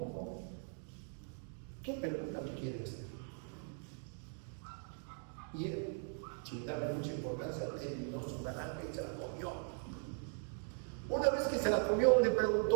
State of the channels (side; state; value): left; silent; 52 dB below the other